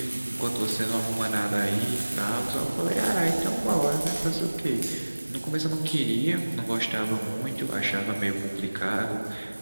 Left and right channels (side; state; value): both; inverted; correlation -1.00